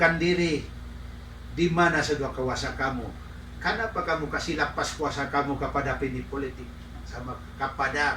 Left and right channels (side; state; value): both; identical; correlation 1.00